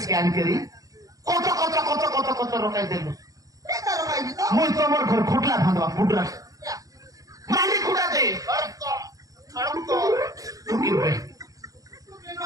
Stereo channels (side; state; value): left; late; 0.17 ms